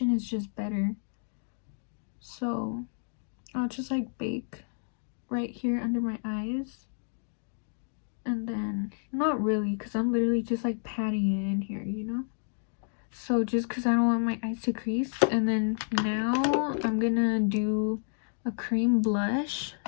is just better. So I'll just like bake right here under my eyes, and then not really, because I'm literally just like patting it in here, you know. So just because I don't want my eyes to crease. And then now I'm gonna do a cream blush,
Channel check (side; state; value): right; silent; digital silence